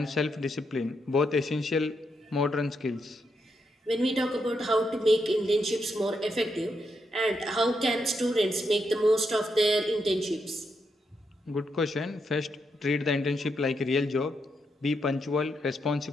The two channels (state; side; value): normal; both; correlation 0.81